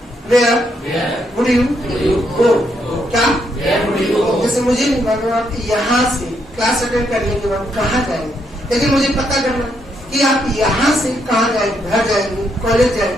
वेयर वुड यू गो। क्या? जैसे मुझे नहीं मालूम आप यहाँ से क्लास अटेंड करने के बाद कहाँ जाएंगे, लेकिन मुझे पता करना कि आप यहाँ से कहाँ जाएंगे। घर जाएंगे, कॉलेज जाएंगे,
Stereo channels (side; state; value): both; normal; correlation 0.76